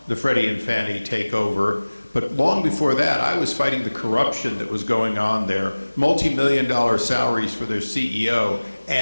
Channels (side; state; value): both; inverted; correlation -1.00